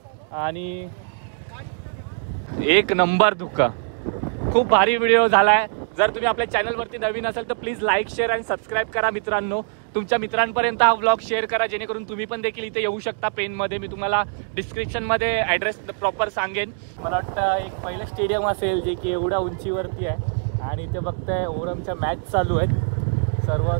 आणि एक नंबर धुकं. खूप भारी व्हिडिओ झालाय. जर तुम्ही आपल्या चॅनलवरती नवीन असाल तर प्लीज लाईक, शेअर आणि सबस्क्राईब करा मित्रांनो. तुमच्या मित्रांपर्यंत हा व्लॉग शेअर करा जेणेकरून तुम्ही पण देखील इथे येऊ शकता पेनमध्ये. मी तुम्हाला डिस्क्रिप्शनमध्ये ॲड्रेस प्रॉपर सांगेन. मला वाटतं एक पहिलं स्टेडियम असेल जे की एवढ्या उंचीवरती आहे आणि इथे बघताय ओरमच्या मॅच चालू आहेत. सर्व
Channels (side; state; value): left; silent; digital silence